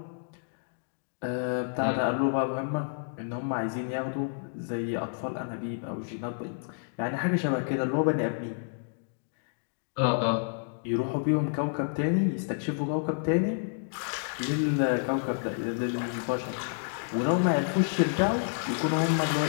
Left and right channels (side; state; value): right; silent; digital silence